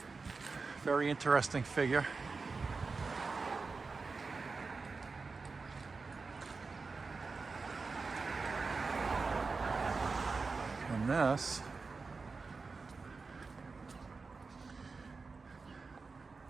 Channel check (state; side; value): quieter; left; 4.3 dB